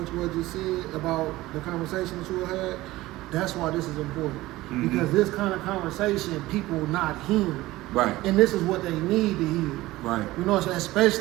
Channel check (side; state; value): left; quieter; 17.9 dB